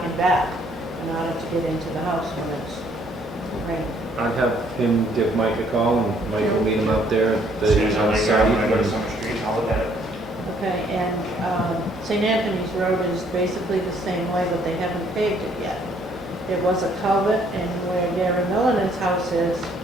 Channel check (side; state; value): both; normal; correlation 0.65